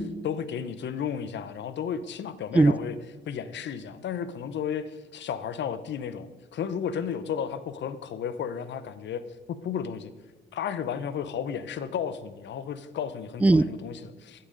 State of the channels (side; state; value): both; normal; correlation 0.61